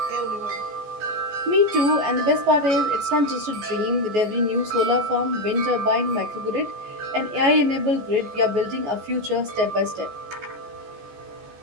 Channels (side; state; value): left; late; 14 ms